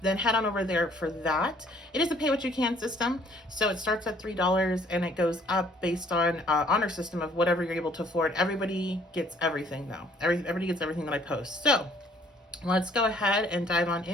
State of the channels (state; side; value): normal; both; correlation 0.60